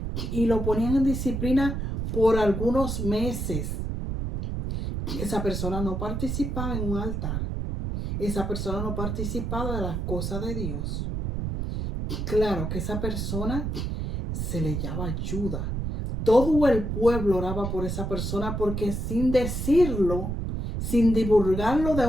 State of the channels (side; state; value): right; noise; rumble, 3 dB below the sound